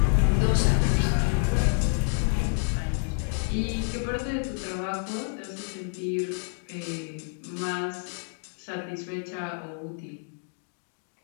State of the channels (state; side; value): silent; right; 59 dB below the other